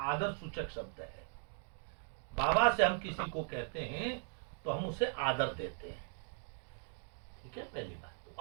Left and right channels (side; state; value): left; silent; 52 dB below the other